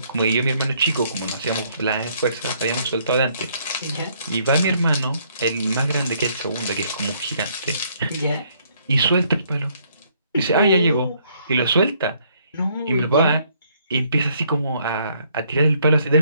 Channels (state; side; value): inverted; both; correlation -0.68